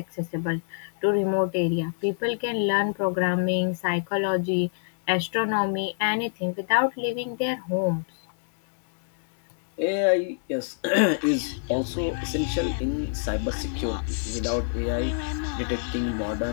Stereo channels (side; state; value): right; silent; digital silence